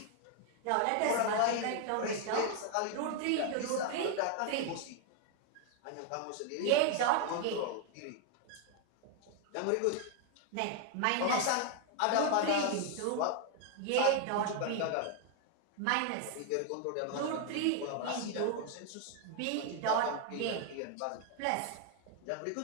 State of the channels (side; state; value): both; different; correlation 0.00